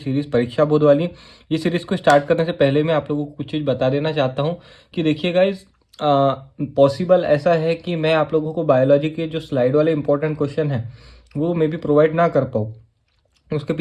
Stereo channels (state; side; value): identical; both; correlation 1.00